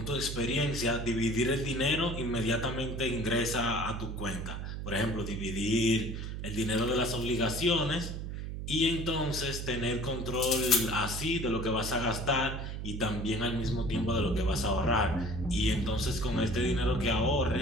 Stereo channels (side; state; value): right; noise; hum, 6 dB below the sound